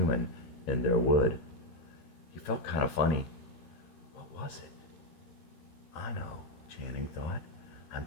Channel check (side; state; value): right; late; 13 ms